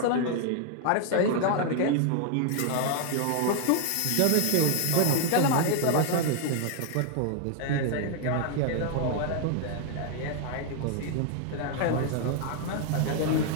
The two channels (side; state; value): both; different; correlation 0.00